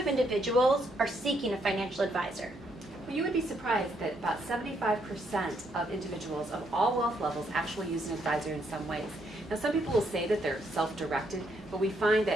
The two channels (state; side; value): normal; both; correlation 0.74